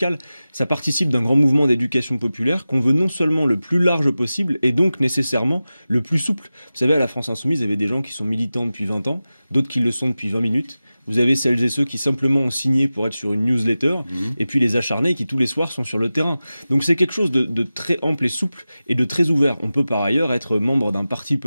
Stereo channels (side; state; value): both; inverted; correlation -0.95